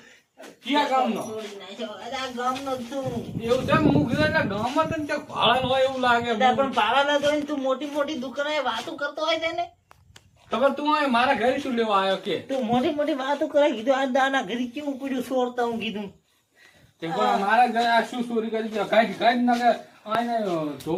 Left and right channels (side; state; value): both; identical; correlation 1.00